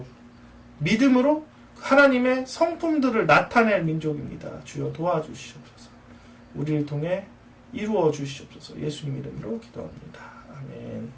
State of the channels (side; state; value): both; identical; correlation 1.00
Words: 믿음으로 하나님의 성품들을 나타낼 민족입니다. 주여 도와주시옵소서. 우리를 통해 이루어 주시옵소서. 예수님 이름으로 기도합니다.